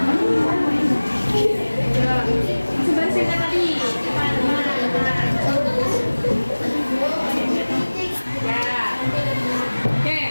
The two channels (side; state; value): both; inverted; correlation -1.00